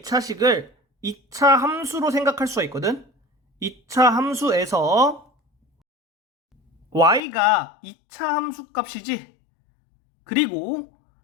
2차식을 2차 함수로 생각할 수가 있거든. 2차 함수에서 y가 2차 함수 값이지. 그리고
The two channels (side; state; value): right; drops out; at 7.2 s